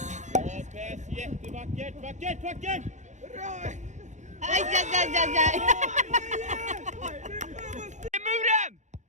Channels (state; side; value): late; left; 0.35 ms